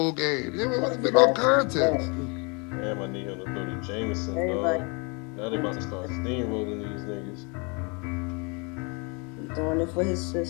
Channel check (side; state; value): right; quieter; 32.3 dB